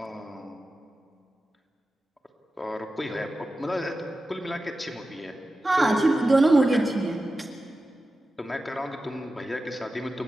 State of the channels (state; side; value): normal; both; correlation 0.93